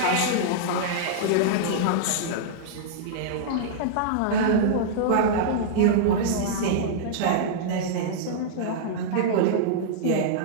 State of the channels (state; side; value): different; both; correlation -0.02